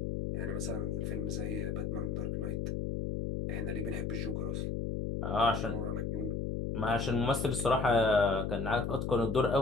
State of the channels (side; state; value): left; noise; hum, 1 dB below the sound